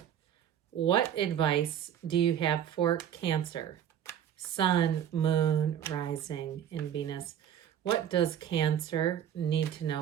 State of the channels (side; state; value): left; quieter; 9.7 dB